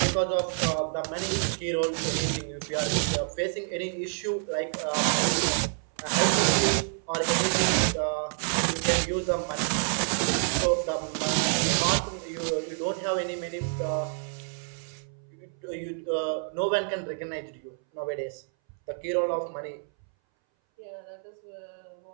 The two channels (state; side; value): silent; left; 59 dB below the other